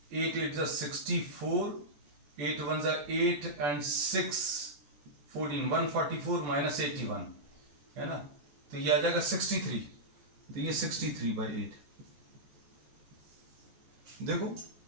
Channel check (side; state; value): left; late; 14 ms